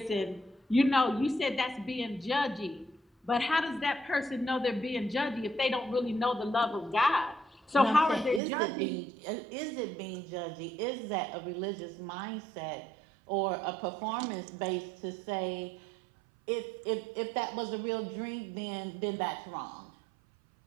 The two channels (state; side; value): drops out; left; at 8.4 s